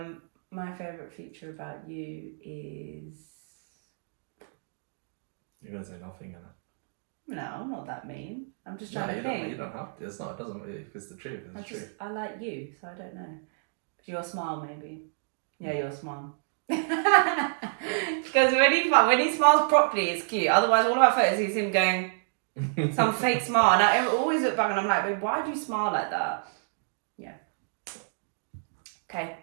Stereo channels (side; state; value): left; silent; digital silence